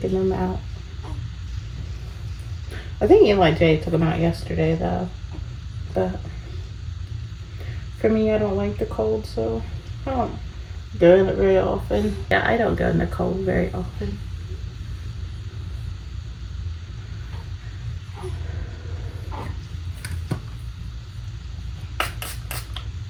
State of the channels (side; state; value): both; identical; correlation 1.00